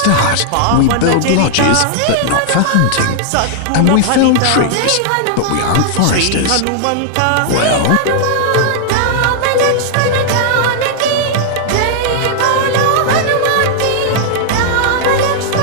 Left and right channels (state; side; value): different; both; correlation -0.01